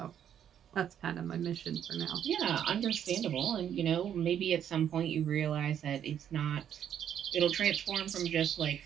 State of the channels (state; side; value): quieter; left; 9.4 dB